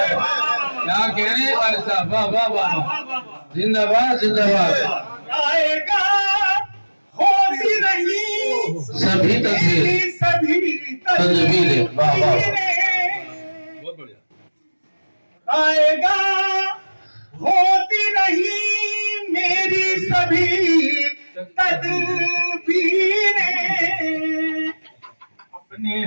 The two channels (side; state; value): both; inverted; correlation -1.00